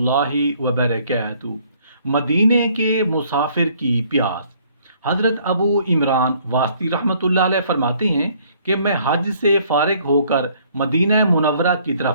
وبرکاتہ۔ مدینے کے مسافر کی پیاس۔ حضرت ابو عمران واسطی رحمۃ اللہ علیہ فرماتے ہیں کہ میں حج سے فارغ ہو کر مدینہ منورہ کی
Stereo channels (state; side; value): inverted; both; correlation -0.62